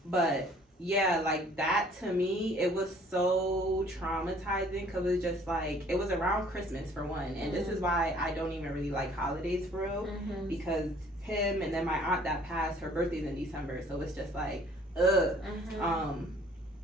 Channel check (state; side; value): normal; both; correlation 0.56